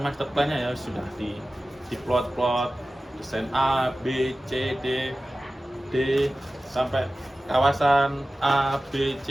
plan-nya ya, sudah di plot desain A, B, C, D sampai kawasan A, B,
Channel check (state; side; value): normal; both; correlation 0.96